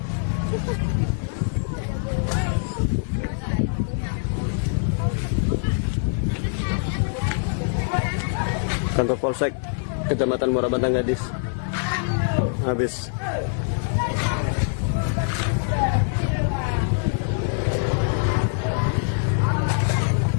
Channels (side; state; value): right; silent; 63 dB below the other